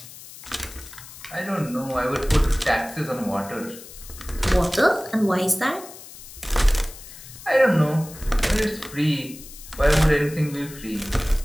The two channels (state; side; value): noise; left; hiss, 16 dB below the sound